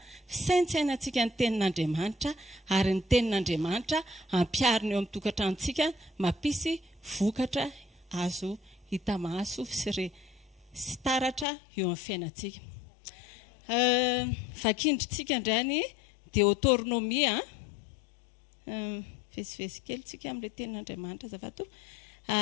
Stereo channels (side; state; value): right; drops out; at 11.5 s